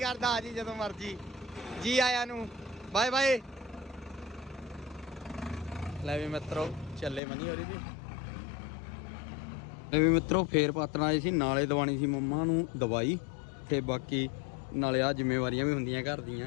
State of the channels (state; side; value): drops out; right; at 7.2 s